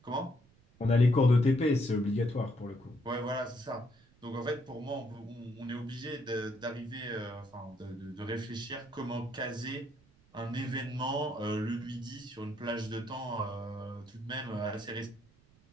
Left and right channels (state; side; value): noise; right; rumble, 29 dB below the sound